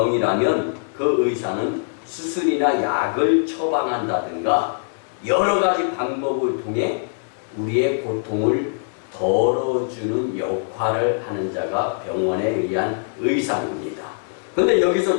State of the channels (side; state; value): right; silent; digital silence